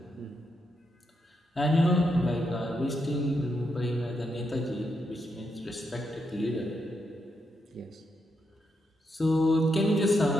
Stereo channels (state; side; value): normal; both; correlation 0.82